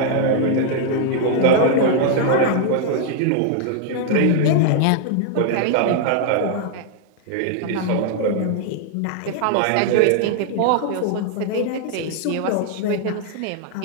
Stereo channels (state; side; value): different; both; correlation 0.00